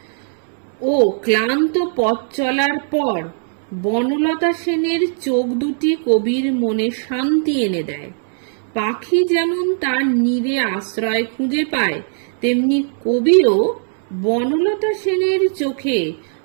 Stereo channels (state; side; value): silent; left; 67 dB below the other